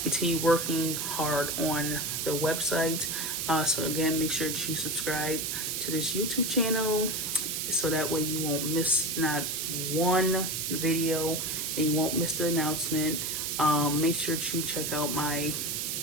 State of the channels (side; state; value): right; noise; hiss, 1 dB below the sound